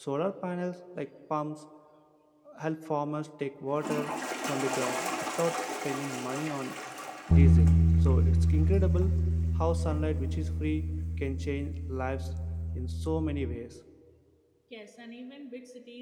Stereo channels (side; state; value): both; identical; correlation 1.00